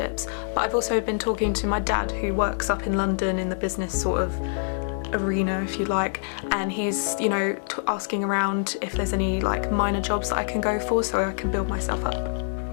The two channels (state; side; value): silent; right; 58 dB below the other